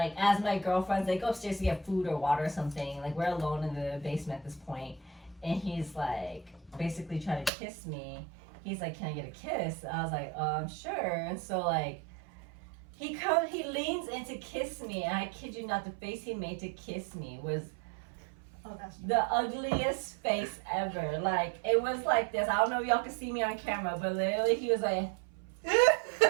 as my girlfriends, they go upstairs to get food or water or something. Like we're alone in the basement at this point. And he's like basically trying to kiss me. He's like, can I get a kiss? I was like, sure. And so like he leans in to kiss me, and I kid you not, the face he made to kiss me was the ugliest face ever. Like it was like this. I don't know if y'all can see me on camera, but literally he was like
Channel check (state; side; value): drops out; left; at 7.5 s